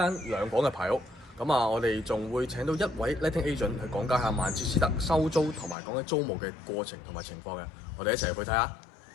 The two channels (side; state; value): right; drops out; at 5.8 s